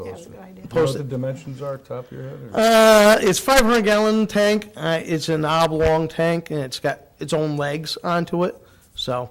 Yeah, it. good idea. Do you know Post what the it. dimensions are, top of your head? Or? It's 500-gallon tank. It's an oblong tank, and it's got its own legs onto it. So,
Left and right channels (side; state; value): both; identical; correlation 1.00